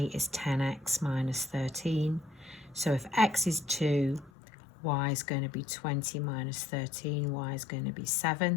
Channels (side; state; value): right; drops out; at 4.3 s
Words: is 10x minus 13. So if x is 2, y is going to be 20 minus 13, y is going to be